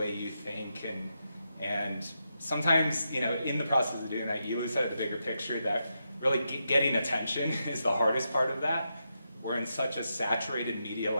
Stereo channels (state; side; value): inverted; both; correlation -0.85